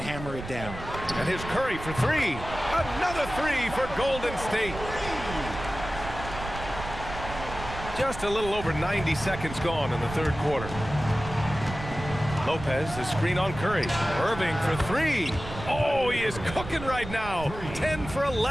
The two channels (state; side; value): noise; right; rumble, 10 dB below the sound